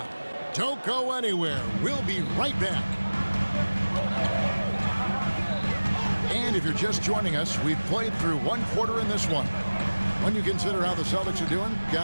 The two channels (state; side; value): inverted; both; correlation -1.00